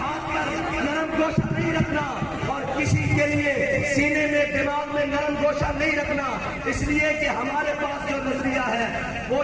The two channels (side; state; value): both; identical; correlation 1.00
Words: पर नरम गोशा नहीं रखना और किसी के लिए सीने में दिमाग में नरम गोशा नहीं रखना। इसलिए कि हमारे पास जो नजरिया है वो